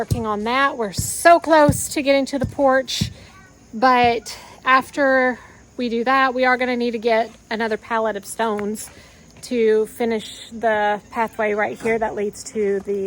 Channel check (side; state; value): both; identical; correlation 1.00